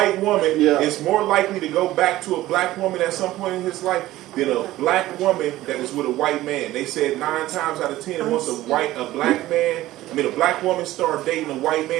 woman is more likely to go back to a black woman at some point in his life than a black woman that is with a white man. They said 9 times out of 10, once a black woman start dating a white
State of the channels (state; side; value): quieter; left; 15.9 dB